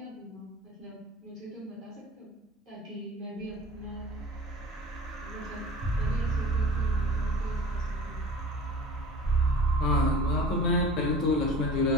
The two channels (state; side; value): normal; both; correlation 0.41